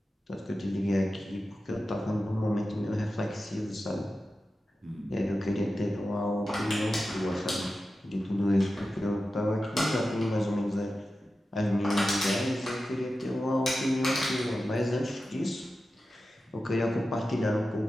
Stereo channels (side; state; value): both; normal; correlation 0.93